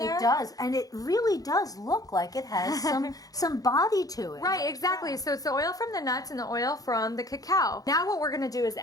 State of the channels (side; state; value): right; late; 0.18 ms